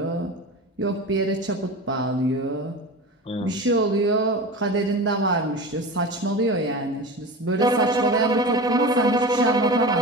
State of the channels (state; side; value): normal; both; correlation 0.30